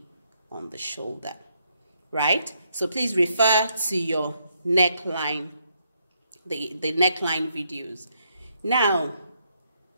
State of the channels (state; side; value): inverted; both; correlation -0.76